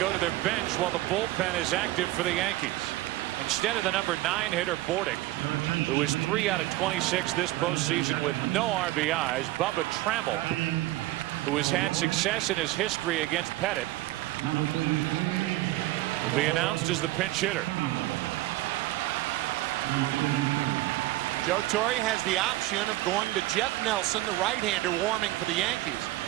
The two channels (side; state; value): left; quieter; 17.3 dB